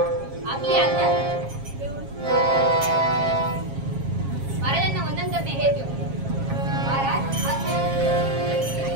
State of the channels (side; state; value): left; late; 7.4 ms